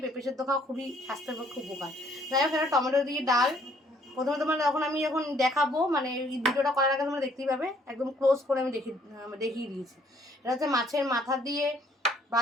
পেঁপে সেদ্ধ খাওয়া খুবই স্বাস্থ্যের পক্ষে উপকার। যাই হোক, এটা টমেটো দিয়ে ডাল। প্রথমে তোমার যখন দেখাবো, মানে এই ভিডিওটা করার আগে তোমরা দেখতেই পাবে, একদম ক্লোজ করে আমি দেখিয়ে দিয়েছি। এটা হচ্ছে মাছের মাথা দিয়ে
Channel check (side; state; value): both; normal; correlation 0.63